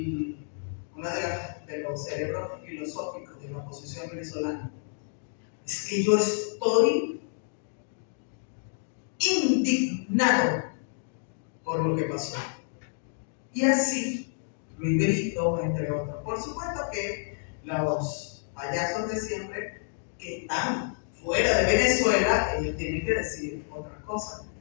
uno de los cerebros filosóficos de la oposición venezolana. Es que yo estoy indignado por lo que pasó. Y así, Luis Brito, entre otros. Por supuesto que los payasos de siempre que están fuera de Venezuela, ellos tienen que decir otras cosas,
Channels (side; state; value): right; silent; digital silence